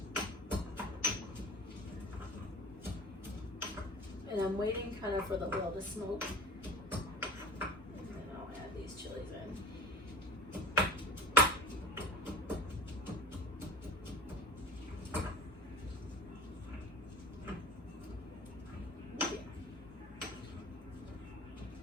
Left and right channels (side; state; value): both; normal; correlation 0.38